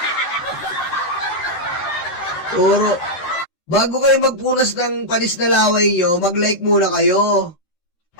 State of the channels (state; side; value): late; right; 13 ms